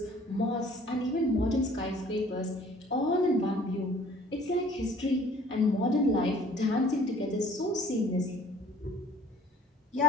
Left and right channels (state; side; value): normal; both; correlation 0.54